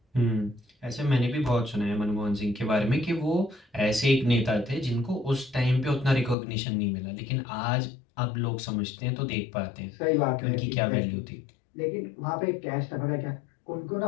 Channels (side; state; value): right; drops out; at 6.4 s